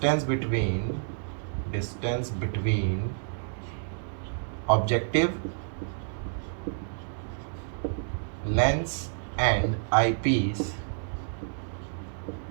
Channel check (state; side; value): silent; left; digital silence